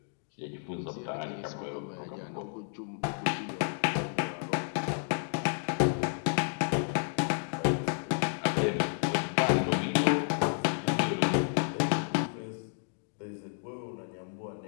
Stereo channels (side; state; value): right; silent; 56 dB below the other